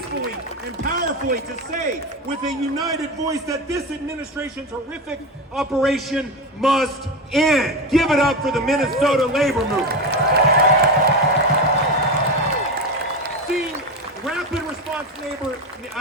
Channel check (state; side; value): normal; both; correlation 0.19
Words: and powerfully to say with a united voice that this administration's horrific operation must end. Give it up for the Minnesota labor movement. Rapid response